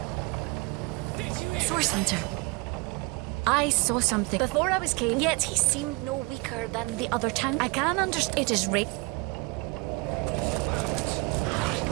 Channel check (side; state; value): left; quieter; 27.6 dB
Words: Source Hunter. I saw something before I was came, yet he seemed no weaker than the other town. I can understand it is right.